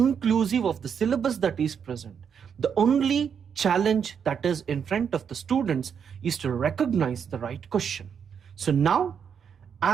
of the syllabus that is present. The only challenge that is in front of the students is to recognize the right question. So now,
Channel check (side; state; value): left; quieter; 7.3 dB